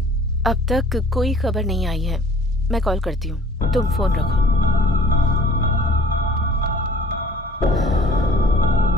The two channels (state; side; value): normal; both; correlation 0.51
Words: अब तक कोई खबर नहीं आई है। मैं कॉल करती हूँ, तुम फोन रखो।